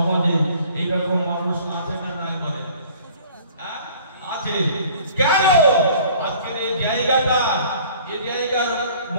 এইরকম মানুষ আছে না নাই বলেন? আছে। কেন? আজকের এই জায়গাটা, এই জায়গার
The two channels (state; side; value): inverted; both; correlation -0.51